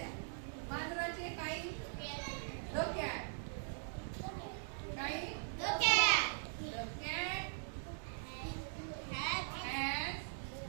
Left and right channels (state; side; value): silent; left; digital silence